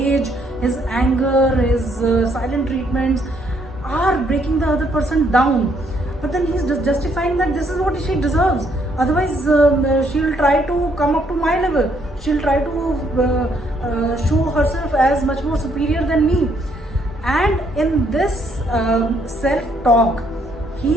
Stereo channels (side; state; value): both; normal; correlation 0.70